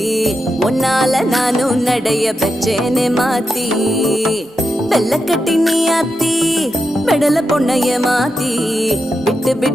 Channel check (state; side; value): normal; both; correlation 0.87